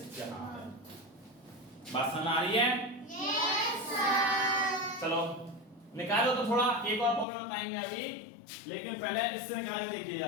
यहाँ आ रहा है। बात समझ आ रही है? Yes sir. चलो निकालो। तो थोड़ा एक और प्रॉब्लम बताएंगे अभी, लेकिन पहले इससे निकाल के देखिए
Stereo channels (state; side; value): drops out; right; at 7.2 s